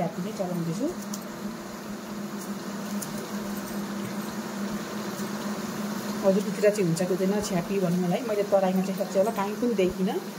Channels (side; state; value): both; identical; correlation 1.00